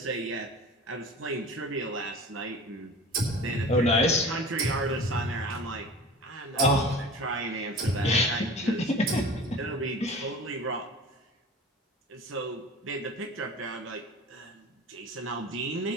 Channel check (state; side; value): normal; both; correlation 0.39